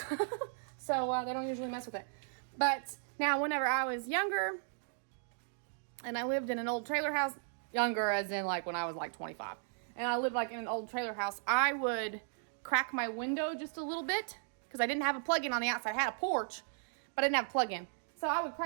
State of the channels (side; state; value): left; silent; digital silence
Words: So they don't usually mess with it. But now whenever I was younger and I lived in an old trailer house, younger as in like when I was like 25, and I lived like in an old trailer house, I would crack my window just a little bit because I didn't have a plug-in on the outside. I had a porch, but I didn't have a plug-in. So I would